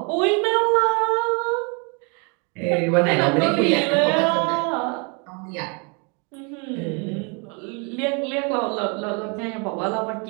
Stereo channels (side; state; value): left; quieter; 34.4 dB